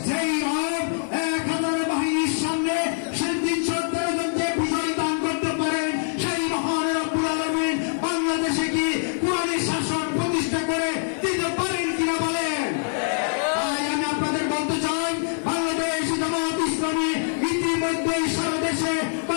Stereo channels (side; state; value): right; silent; digital silence